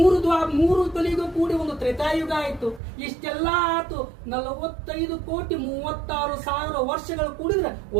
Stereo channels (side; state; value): left; drops out; at 2.8 s